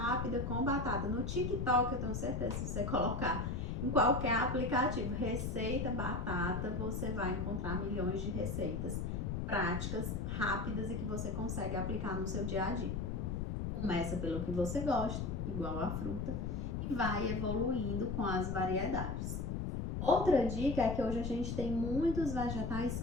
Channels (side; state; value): left; noise; rumble, 2 dB below the sound